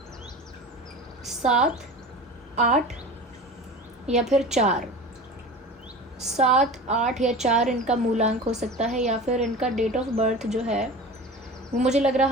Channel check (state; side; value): normal; both; correlation 0.34